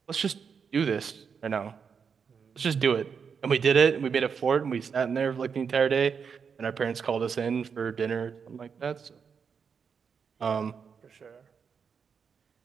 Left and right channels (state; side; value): quieter; left; 6.3 dB